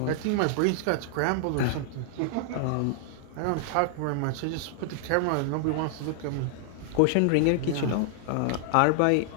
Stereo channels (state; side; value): different; both; correlation -0.01